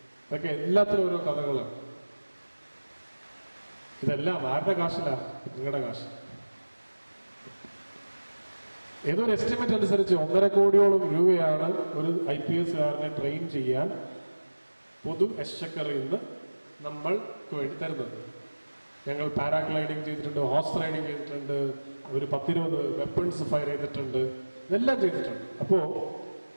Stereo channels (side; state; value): both; inverted; correlation -1.00